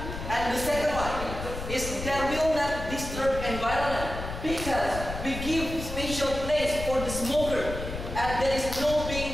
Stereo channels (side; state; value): left; noise; rumble, 7 dB below the sound